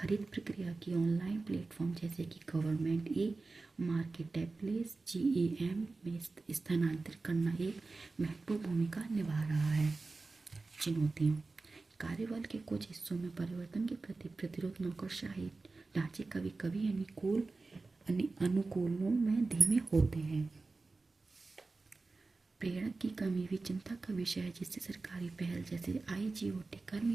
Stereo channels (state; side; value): quieter; left; 3.7 dB